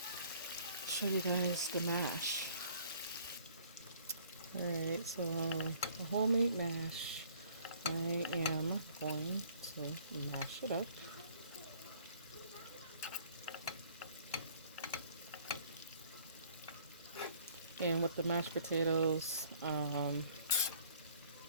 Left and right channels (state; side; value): inverted; both; correlation -0.56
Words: show you guys the mash. Alright, so a homemade mash, I am going to mash it up. And with the mashed potatoes,